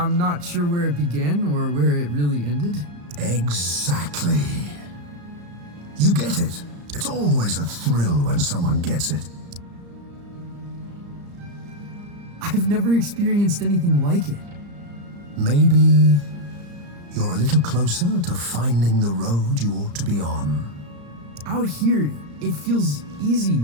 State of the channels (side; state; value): left; late; 34 ms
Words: not sure where it began or where it really ended. Exactly. You get it. It's always a thrill when someone gets it. I've never experienced anything like it. Maybe you're a little closer to finding the road you ought to be on. Out here, it feels easy,